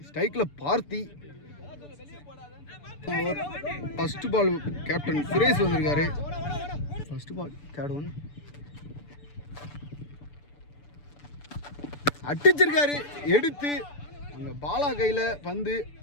ஸ்ட்ரைக்கில் பார்த்தி. ஃபர்ஸ்ட் பால் கேப்டன் சுரேஷ் வந்திருக்காரு. ஃபர்ஸ்ட் பால் தேர்ட் ஒன் அடிச்சிருக்காரு. எடுத்து அங்கே பாலா கையில் பந்து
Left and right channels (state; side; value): late; right; 6.9 ms